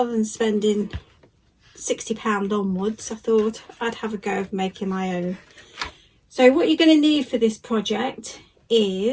than spending £60 onwards, I thought I'd have a go of making my own. So what you're going to need for this project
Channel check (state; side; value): identical; both; correlation 1.00